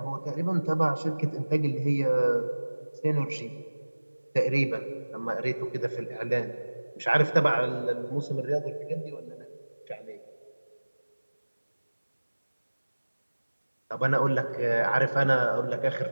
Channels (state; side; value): inverted; both; correlation -1.00